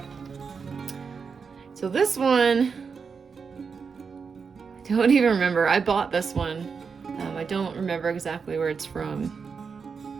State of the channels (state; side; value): quieter; left; 5.6 dB